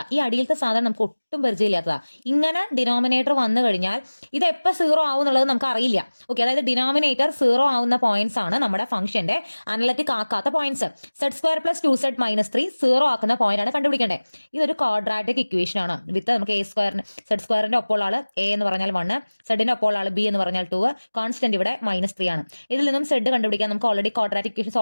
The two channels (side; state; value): both; inverted; correlation -1.00